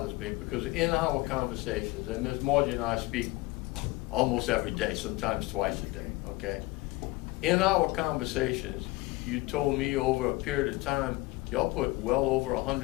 me, because in our conversations, and Ms. Margie and I speak almost every day, sometimes twice a day, okay? In our conversations, you told me over a period of time, y'all put well over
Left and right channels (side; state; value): right; quieter; 21.1 dB